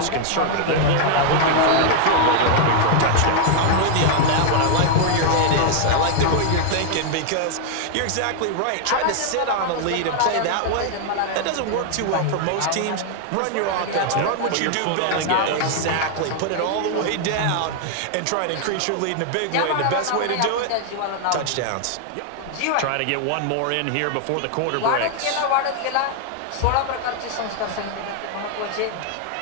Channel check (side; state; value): both; different; correlation 0.00